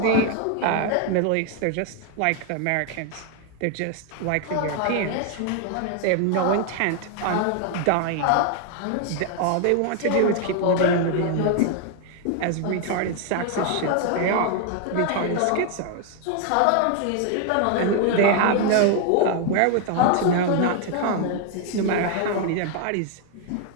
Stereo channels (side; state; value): both; different; correlation 0.00